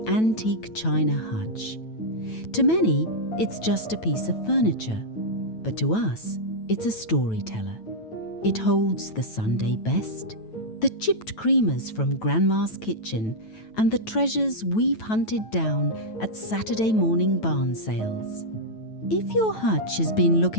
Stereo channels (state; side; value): late; right; 9.1 ms